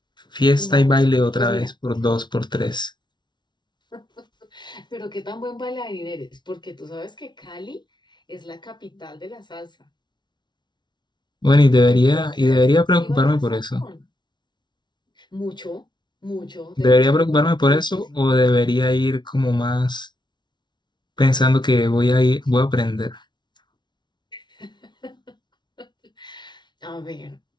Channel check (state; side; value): late; right; 0.21 ms